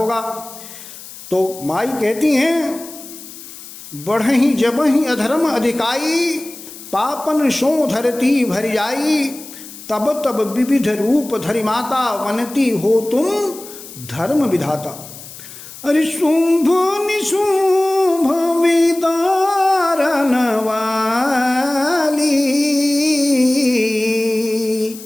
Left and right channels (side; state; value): left; noise; hiss, 15 dB below the sound